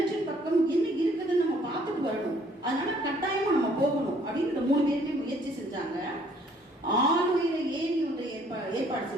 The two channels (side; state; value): both; normal; correlation 0.61